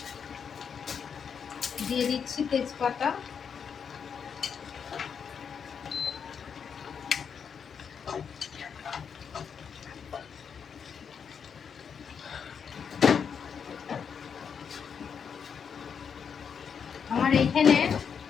দিয়ে দিচ্ছি, তেজপাতা, আমার এইখানে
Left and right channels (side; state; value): right; quieter; 6.9 dB